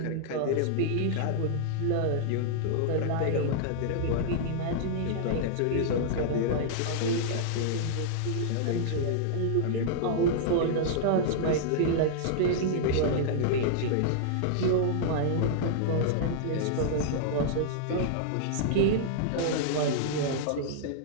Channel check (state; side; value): different; both; correlation -0.01